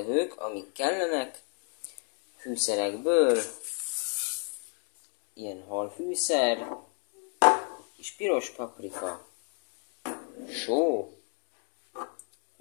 amik kellenek, fűszerekből, ilyen halfűszer, kis piros paprika, só,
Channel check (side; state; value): right; quieter; 39.0 dB